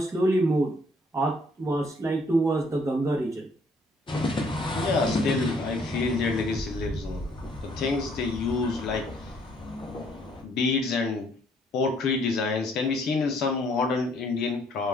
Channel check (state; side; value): normal; both; correlation 0.65